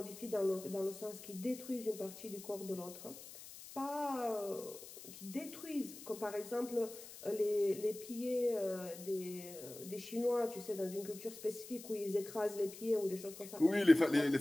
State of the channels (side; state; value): left; noise; hiss, 14 dB below the sound